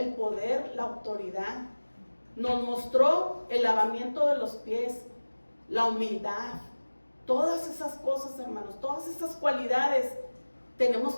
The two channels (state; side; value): inverted; both; correlation -1.00